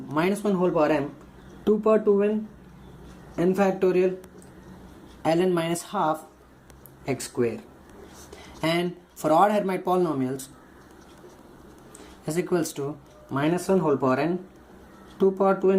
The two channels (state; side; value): identical; both; correlation 1.00